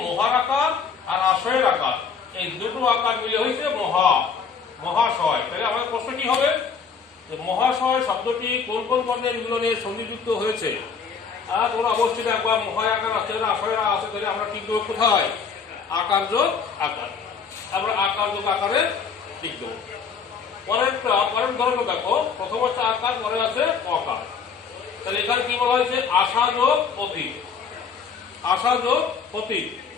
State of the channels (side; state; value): right; quieter; 6.0 dB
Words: মহার আকার আর আশয়ের আকার, এই দুটো আকার মিলে হয়েছে মহাশয়। তাহলে আমাদের প্রশ্ন কি হবে? মহাশয় শব্দটি কোন কোন বর্ণের মিলনে সংযুক্ত হয়েছে? তোমরা অবশ্যই দেখবা মহায় আকার আছে, আশয়ের আছে। তাহলে আমরা ঠিক দেবো কোথায়? আকার যোগ আকার। আমরা আকার যোগ আকারে ঠিক দেবো। পরের ধরনের দেখো, প্রথম হচ্ছে আকার, পরে আছে অকার। তাহলে এখানে কি বলা হয়েছে? আশা যোগ অতীত, আশা যোগ অতীত।